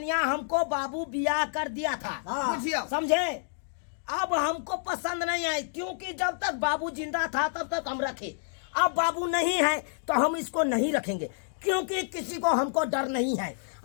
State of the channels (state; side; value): silent; right; digital silence